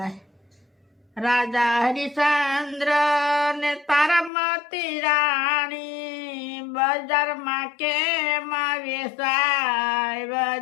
રાજા હરિશ્ચંદ્ર ને તારામતી રાણી, બજારમાં કેમ વેચાય.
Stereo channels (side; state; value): right; drops out; at 4.3 s